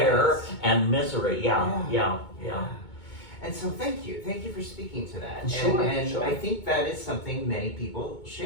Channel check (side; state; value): right; late; 2.2 ms